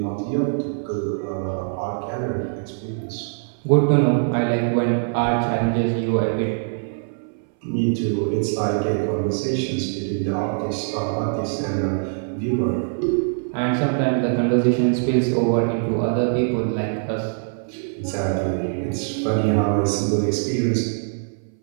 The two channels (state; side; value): silent; left; 60 dB below the other